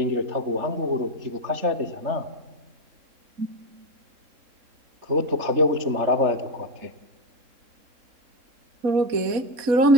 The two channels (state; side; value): late; left; 3.7 ms